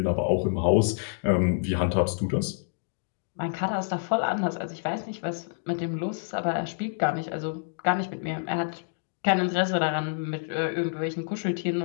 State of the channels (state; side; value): silent; right; digital silence